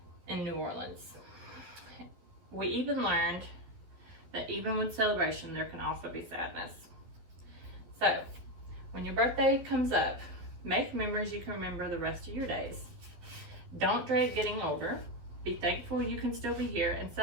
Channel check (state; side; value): late; left; 12 ms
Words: in New Orleans. We even learned that even with celebration, there can also be sadness. So, when your birthday comes up, make memories you can remember the rest of your days. Don't dread getting older. Be thankful you can still be here and